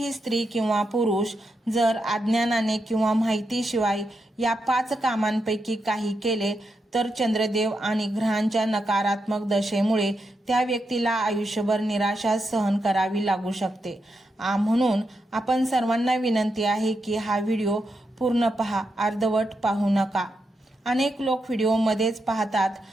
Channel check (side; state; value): both; normal; correlation 0.84